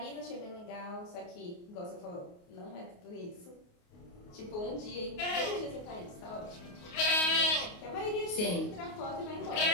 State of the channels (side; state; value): right; late; 28 ms